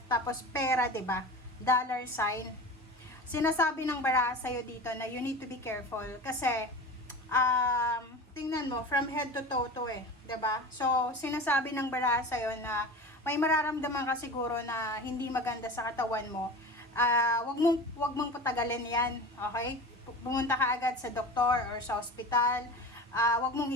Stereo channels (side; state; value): both; normal; correlation 0.32